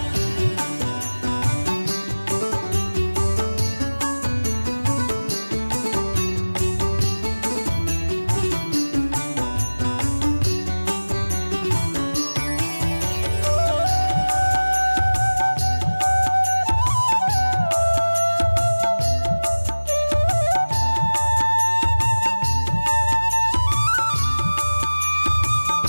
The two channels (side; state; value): both; inverted; correlation -1.00